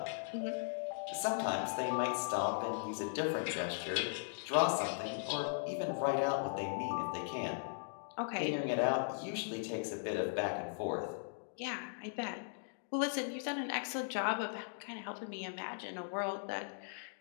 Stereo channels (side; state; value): right; silent; digital silence